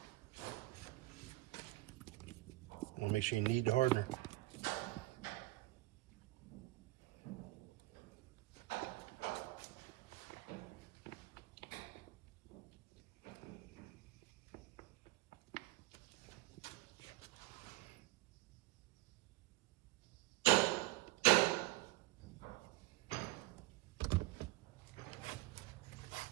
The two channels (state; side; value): quieter; left; 19.1 dB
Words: Make sure you knead the hardener.